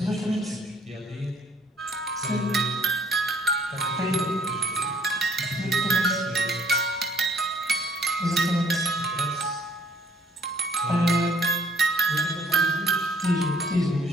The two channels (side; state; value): both; normal; correlation 0.61